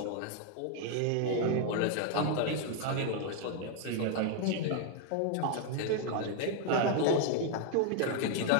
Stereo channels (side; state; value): both; different; correlation 0.00